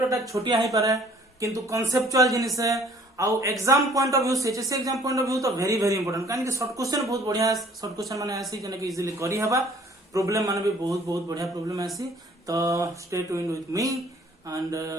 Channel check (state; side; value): normal; both; correlation 0.56